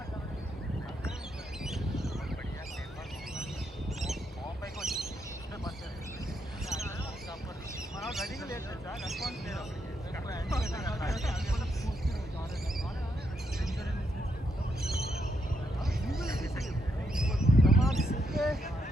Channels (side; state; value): both; normal; correlation 0.79